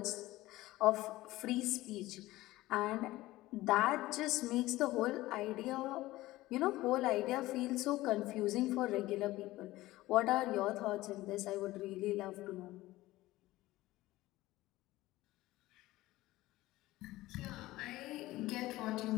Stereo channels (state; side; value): quieter; right; 17.5 dB